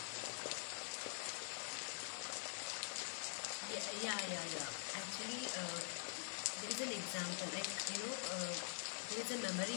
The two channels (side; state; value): right; silent; digital silence